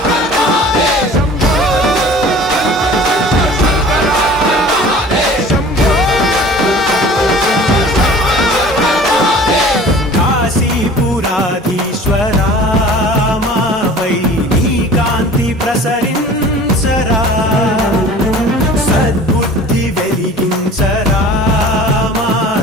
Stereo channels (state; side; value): normal; both; correlation 0.45